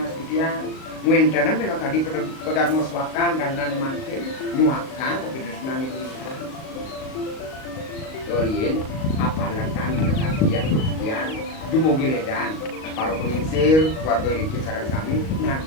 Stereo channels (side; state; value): right; late; 38 ms